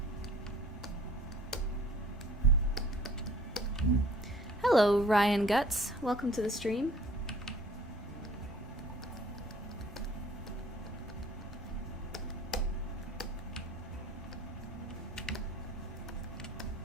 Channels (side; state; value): both; normal; correlation 0.52